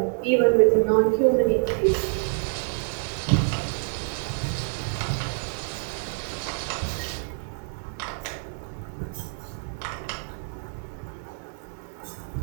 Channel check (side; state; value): left; silent; digital silence